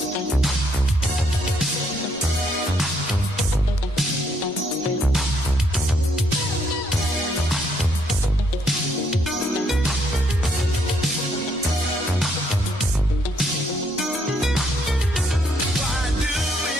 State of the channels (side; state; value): both; normal; correlation 0.71